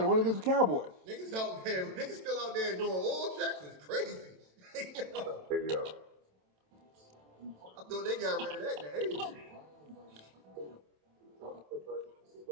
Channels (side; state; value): left; late; 27 ms